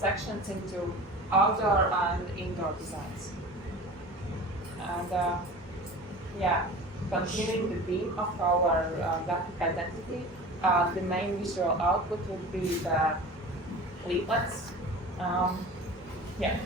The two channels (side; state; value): both; normal; correlation 0.37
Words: into outdoor and indoor designs. And continuing the theme of our graphic identity, the main visual output would be the leaflets.